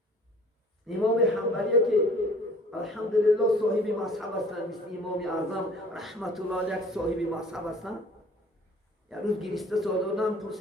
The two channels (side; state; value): both; normal; correlation 0.51